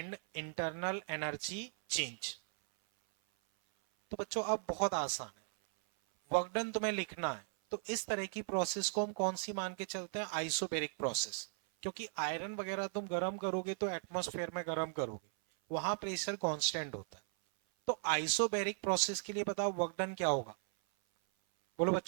internal energy change. तो बच्चों अब बहुत आसान है, वर्क डन तुम्हें लिखना है, तो इस तरह की प्रोसेस को हम कौन सी मान के चलते हैं? Isobaric process. क्योंकि आयरन वगैरह तुम गर्म करोगे तो एटमॉस्फेयर में गर्म करोगे, वहां प्रेशर कांस्टेंट होता है। तो आइसोबेरिक प्रोसेस के लिए बताओ वर्क डन क्या होगा? बोलो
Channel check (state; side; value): silent; left; 53 dB below the other